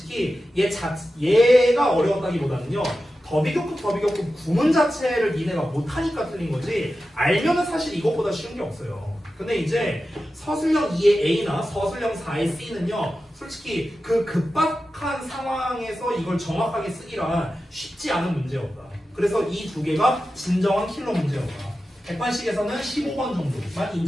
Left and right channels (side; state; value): both; normal; correlation 0.93